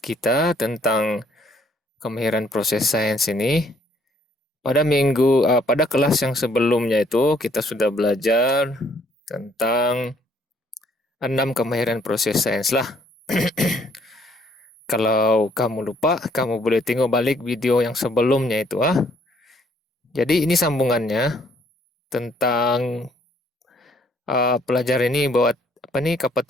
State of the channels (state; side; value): normal; both; correlation 0.65